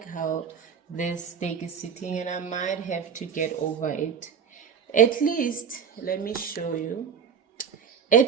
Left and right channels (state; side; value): quieter; left; 6.8 dB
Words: how this stake is sitting, and I might have to get over it. At least, let me show you.